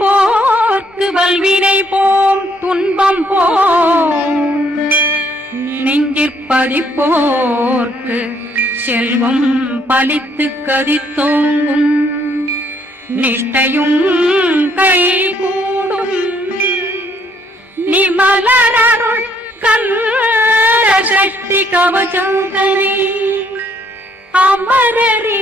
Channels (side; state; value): both; normal; correlation 0.67